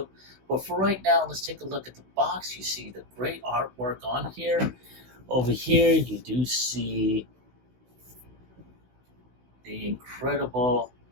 But for right now, let's take a look at the box. You see the great artwork on here. Over here, you do see the incredible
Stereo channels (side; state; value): left; late; 16 ms